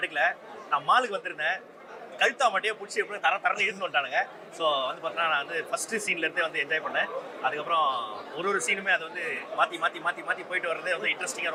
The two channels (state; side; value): identical; both; correlation 1.00